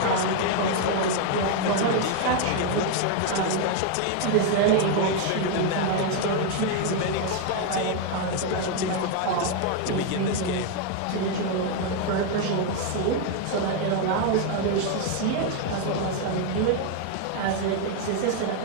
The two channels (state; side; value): different; both; correlation 0.01